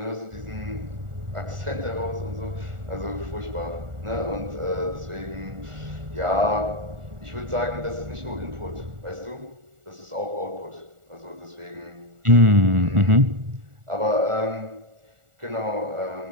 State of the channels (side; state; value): left; late; 1.4 ms